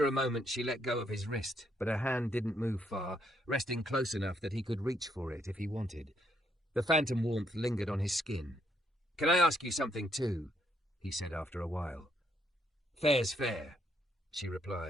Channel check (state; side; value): normal; both; correlation 0.74